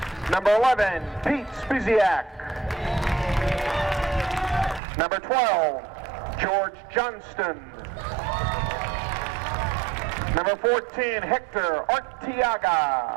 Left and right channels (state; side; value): drops out; left; at 4.8 s